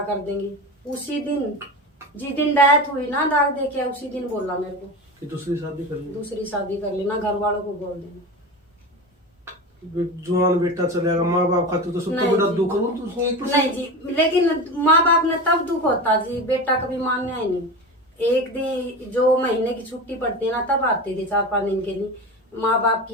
कर देंगे। उसी दिन, जिस दिन डेथ हुई ना, दाग देके, उसी दिन बोला मेरे को कि दूसरी शादी कर लेना, घर वालों को बोल देना। जवान बेटा चलेगा, माँ बाप खाते तो सबको बड़ा दुख हो। नहीं जी, लेकिन माँ बाप ने तब दुख होता जी, बेटा कभी मानना ही नहीं। एक दिन जो महीने की छुट्टी पड़ती है ना, तब आते थे 4-5 दिन के लिए माँ बाप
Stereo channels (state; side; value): normal; both; correlation 0.26